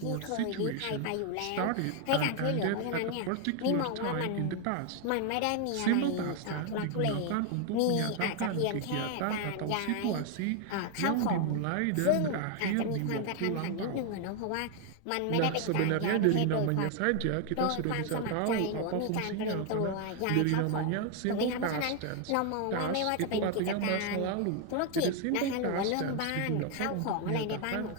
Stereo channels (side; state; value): both; different; correlation 0.01